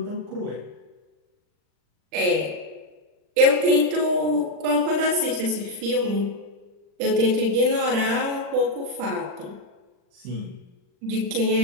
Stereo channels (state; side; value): late; left; 39 ms